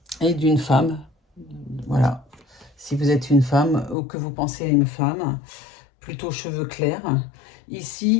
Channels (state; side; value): drops out; right; at 4.0 s